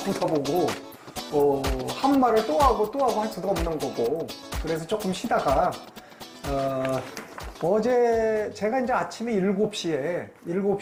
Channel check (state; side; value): identical; both; correlation 1.00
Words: 보고 한 말을 또 하고 할 수도 없는 거고, 그래서 조금 쉬다가 어제 제가 이제 아침에